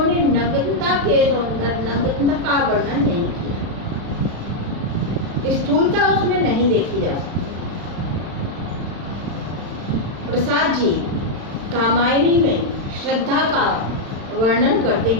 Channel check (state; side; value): late; left; 36 ms